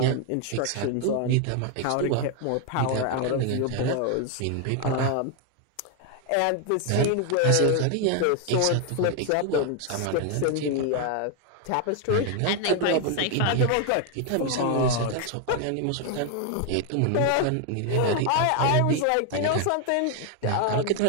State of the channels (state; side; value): different; both; correlation 0.01